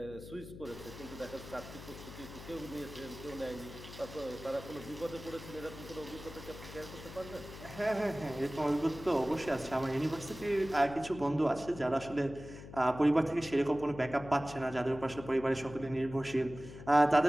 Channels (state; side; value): noise; left; hum, 14 dB below the sound